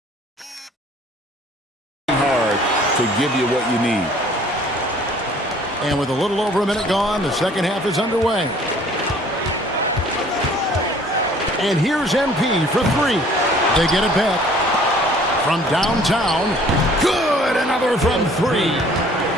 hard to give you what you need. And with a little over a minute gone, the second half is underway. And here's MP for 3. They get it back. From downtown, good, another from 3.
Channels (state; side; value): normal; both; correlation 0.54